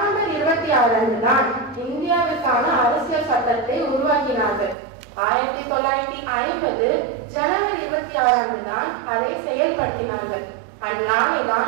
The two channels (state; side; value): drops out; left; at 4.8 s